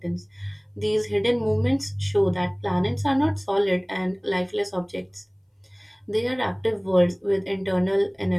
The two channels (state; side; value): identical; both; correlation 1.00